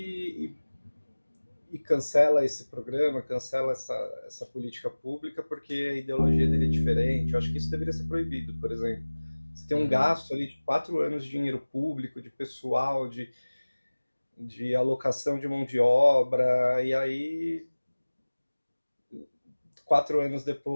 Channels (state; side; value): inverted; both; correlation -1.00